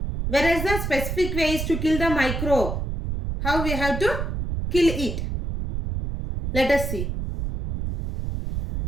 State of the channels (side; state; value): right; noise; rumble, 3 dB below the sound